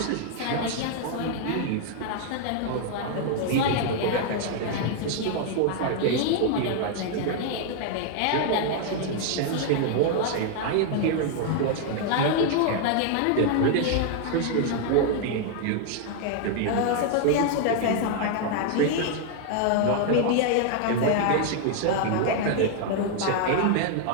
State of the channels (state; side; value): different; both; correlation 0.00